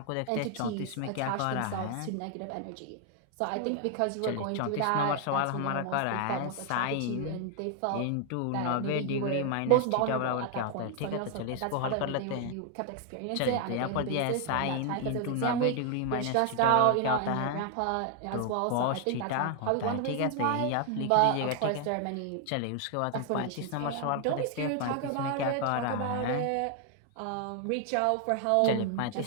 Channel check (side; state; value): both; different; correlation 0.00